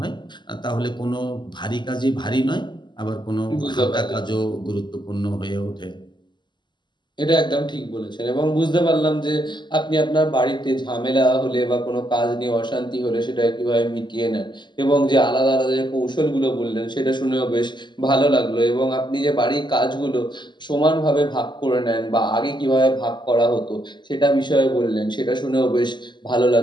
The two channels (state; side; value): late; right; 0.22 ms